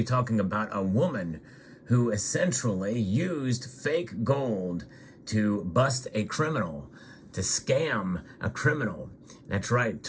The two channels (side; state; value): both; identical; correlation 1.00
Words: talking about a woman who essentially used fake gold to bust a criminal, to scam a criminal. That's right,